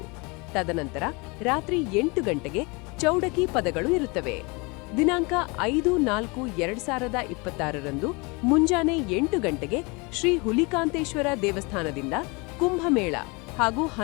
ತದನಂತರ ರಾತ್ರಿ 8 ಗಂಟೆಗೆ ಚೌಡಕಿ ಪದಗಳು ಇರುತ್ತವೆ. ದಿನಾಂಕ 5/4/2026 ಮುಂಜಾನೆ 8 ಗಂಟೆಗೆ ಶ್ರೀ ಹುಲಿಕಾಂತೇಶ್ವರ ದೇವಸ್ಥಾನದಿಂದ ಕುಂಭಮೇಳ ಹಾಗೂ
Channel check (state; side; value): quieter; right; 28.3 dB